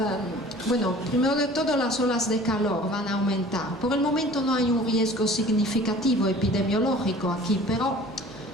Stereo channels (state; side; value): normal; both; correlation 0.46